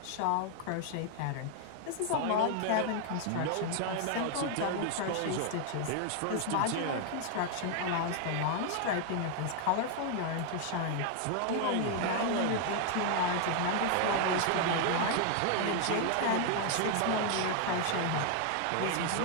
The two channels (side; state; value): both; different; correlation 0.00